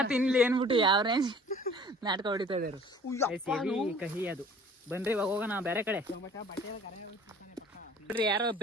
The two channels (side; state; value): both; normal; correlation 0.50